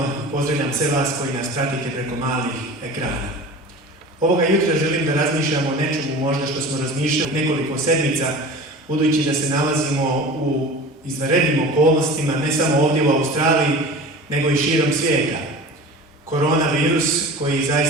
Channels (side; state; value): both; normal; correlation 0.37